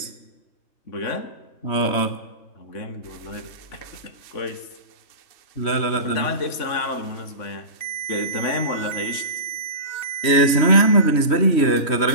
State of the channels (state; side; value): late; right; 3.1 ms